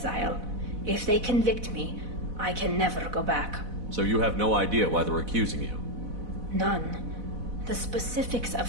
If they convict me, I can never go back. So you have no idea why they're accusing you? None. The specifics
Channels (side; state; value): left; late; 4.1 ms